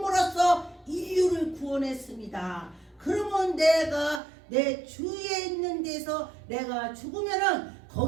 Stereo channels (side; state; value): left; drops out; at 4.2 s